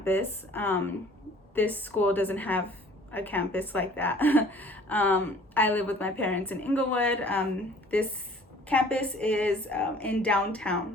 this school doesn't have a campus like that. I live with my parents in Inglewood. This campus is in downtown,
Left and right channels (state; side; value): normal; both; correlation 0.52